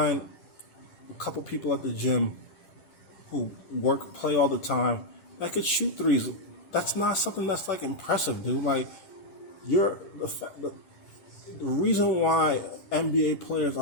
a couple people at the gym who play all the time that could shoot threes. That's not something that's like impressive, dude. Like, you're the reason why NBA players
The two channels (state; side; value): late; right; 10 ms